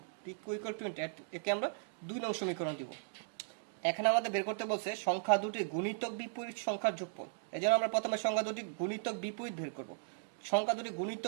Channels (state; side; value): silent; left; digital silence